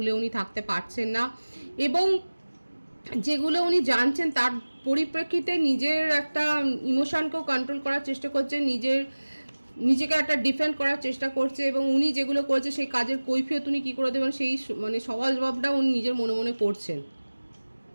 উনি থাকতে পারছেন না, এবং যেগুলো উনি জানছেন তার পরিপ্রেক্ষিতে নিজের একটা ইমোশনকেও কন্ট্রোল করার চেষ্টা করছেন, নিজেকে একটা ডিফেন্ড করার চেষ্টা করছে, এবং উনি যেগুলো করছে সেই কাজের কৈফিয়ত উনি কী করে দেবেন সেই সওয়াল জবাবটা উনি নিজের মনে মনে করছেন।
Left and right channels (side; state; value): both; inverted; correlation -1.00